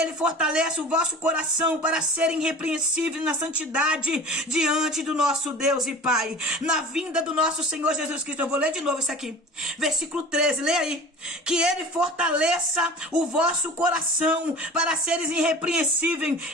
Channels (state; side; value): normal; both; correlation 0.40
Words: fortaleça o vosso coração para serem irrepreensíveis na santidade diante do nosso Deus e Pai, na vinda do nosso Senhor Jesus Cristo. Eu vou ler de novo isso aqui. Versículo 13, lê aí. Que ele fortaleça o vosso coração para seres irrepreensíveis